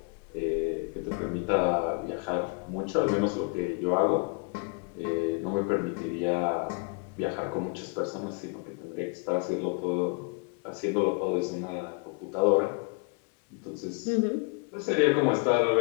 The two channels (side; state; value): right; quieter; 36.2 dB